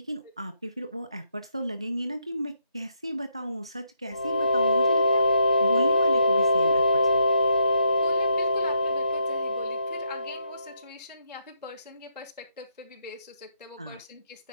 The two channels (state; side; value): inverted; both; correlation -0.77